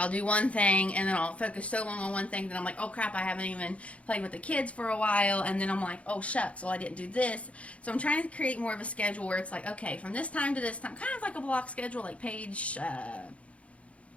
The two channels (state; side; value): late; right; 0.063 ms